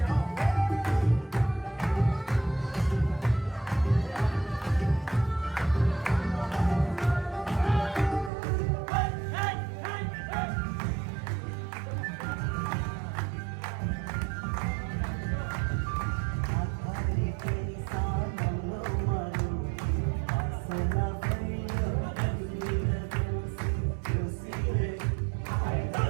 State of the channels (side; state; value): left; drops out; at 8.3 s